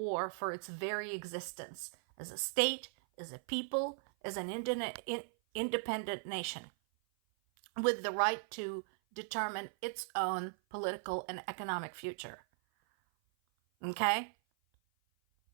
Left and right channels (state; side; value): silent; left; 52 dB below the other